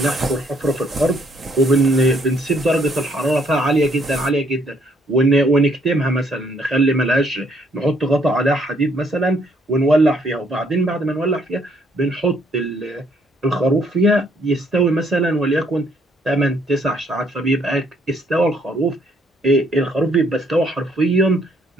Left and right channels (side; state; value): both; normal; correlation 0.68